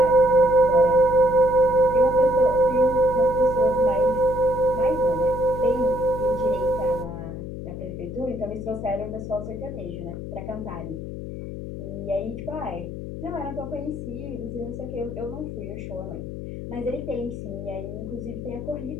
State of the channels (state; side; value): noise; left; hum, 8 dB below the sound